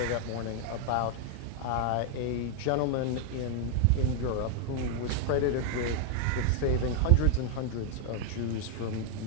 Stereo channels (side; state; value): both; different; correlation 0.00